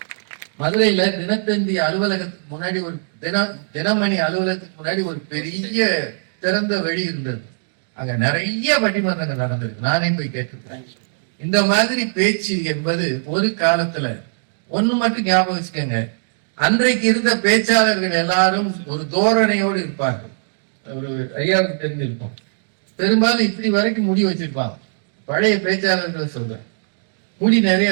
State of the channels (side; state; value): left; silent; digital silence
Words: மதுரையில தினத்தந்தி அலுவலகத்துக்கு முன்னாடி ஒரு தினமணி அலுவலகத்துக்கு முன்னாடி ஒரு பெரிய திறந்த வெளி இருந்தது. அங்க நிறைய பட்டிமன்றங்கள் நடந்திருக்கு. நானே போய் கேட்டிருக்கேன். இந்த மாதிரி பேச்சு என்பது ஒரு காலத்துல ஒண்ணு மட்டும் ஞாபகம் வச்சுக்கோங்க, அன்றைக்கு இருந்த பேச்சாளர்கள் எல்லாரும் ஒரு தோரணையோடு இருப்பார்கள். ஒரு ஐயாவுக்கு தெரிஞ்சிருக்கும், பெரும்பாலும் இப்படி வரைக்கும் முடி வச்சிருப்பாங்க. பழைய பேச்சாளர்களை சொல்றேன், முடி